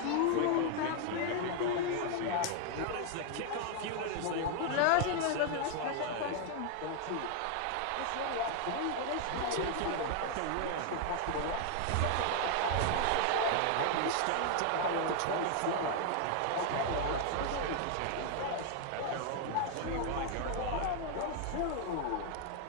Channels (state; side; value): different; both; correlation 0.00